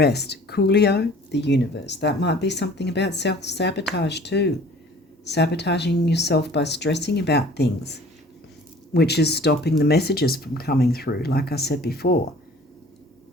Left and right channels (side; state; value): both; normal; correlation 0.49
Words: Coolio, the universe. That might be something about self-sabotage too. Sabotaging yourself by stressing about things, which is stopping the messages from coming through, like I said before.